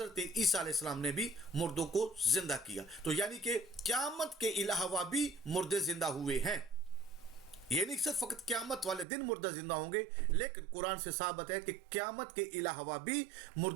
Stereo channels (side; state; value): left; drops out; at 9.1 s